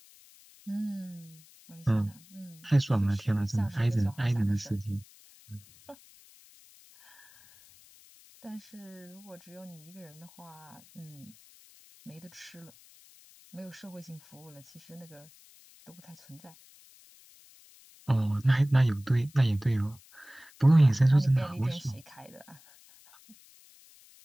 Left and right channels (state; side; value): noise; left; hiss, 25 dB below the sound